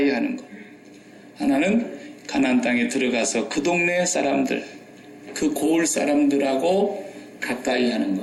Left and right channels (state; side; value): identical; both; correlation 1.00